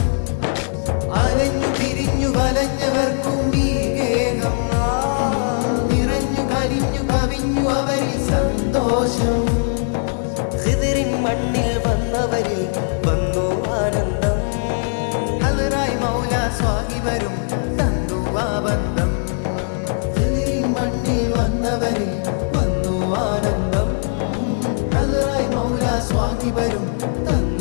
അലഞ്ഞു തിരിഞ്ഞു വലഞ്ഞവർക്കും ഈ ഗേഹം നിറഞ്ഞു കരിഞ്ഞു കവിഞ്ഞു അവരിൽ സന്തോഷം ഖിദിറിൻ മണ്ണിൽ വന്നവരിൽ വന്നു ആനന്ദം ഹലറായി മൗല സ്വാഹിബരും തന്നു ആ ബന്ധം ഖിദിറിൻ മണ്ണിൽ വന്നവരിൽ വന്നു ആനന്ദം ഹലറായി മൗല സ്വാഹിബരും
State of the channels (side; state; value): right; silent; digital silence